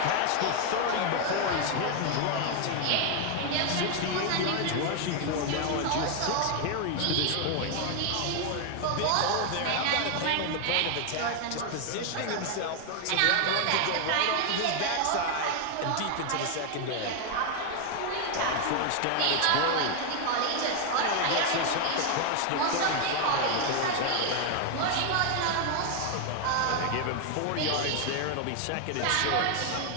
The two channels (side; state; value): both; different; correlation 0.01